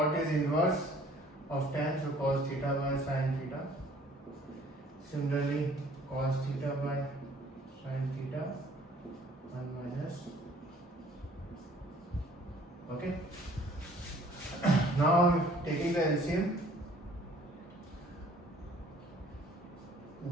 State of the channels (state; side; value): normal; both; correlation 0.55